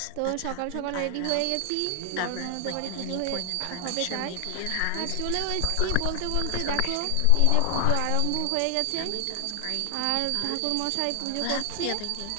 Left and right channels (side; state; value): both; different; correlation 0.00